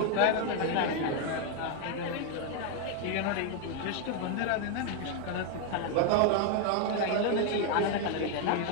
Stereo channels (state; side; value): different; both; correlation 0.01